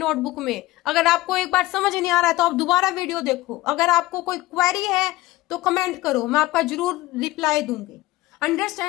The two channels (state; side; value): quieter; right; 18.5 dB